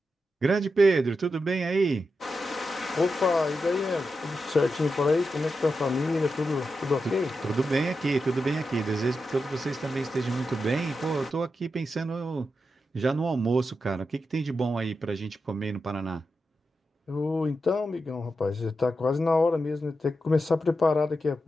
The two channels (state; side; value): normal; both; correlation 0.88